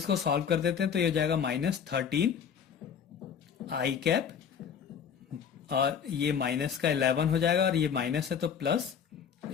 सॉल्व कर देते हैं, तो ये हो जाएगा -13 आई कैप और ये माइनस का 11 हो जाएगा, और ये माइनस है तो प्लस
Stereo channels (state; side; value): quieter; right; 7.5 dB